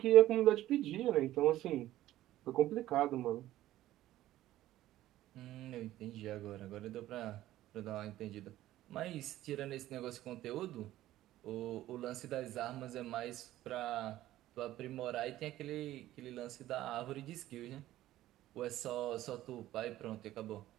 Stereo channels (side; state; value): left; quieter; 14.6 dB